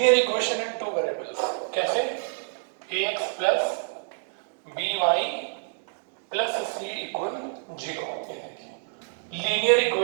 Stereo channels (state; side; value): silent; left; digital silence